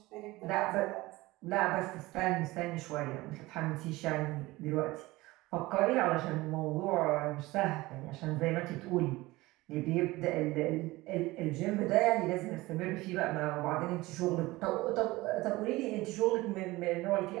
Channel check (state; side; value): quieter; left; 20.0 dB